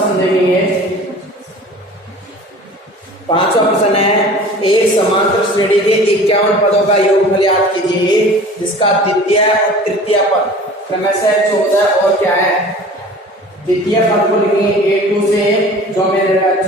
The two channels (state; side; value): normal; both; correlation 0.43